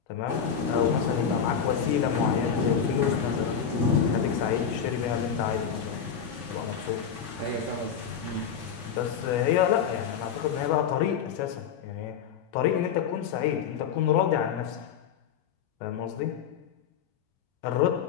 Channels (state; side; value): quieter; right; 7.5 dB